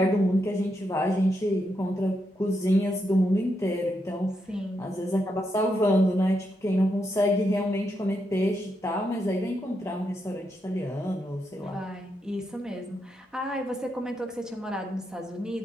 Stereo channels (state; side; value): normal; both; correlation 0.82